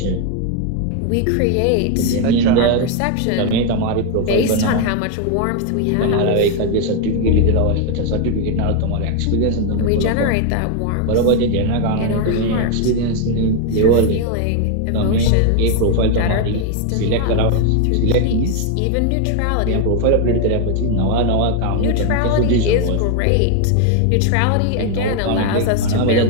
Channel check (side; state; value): both; different; correlation 0.01